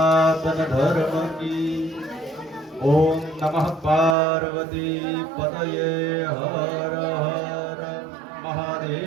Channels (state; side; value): drops out; left; at 4.2 s